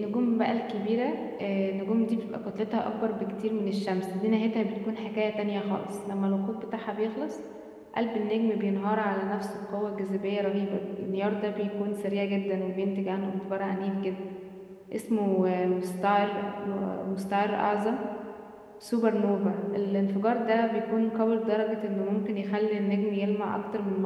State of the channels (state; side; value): identical; both; correlation 1.00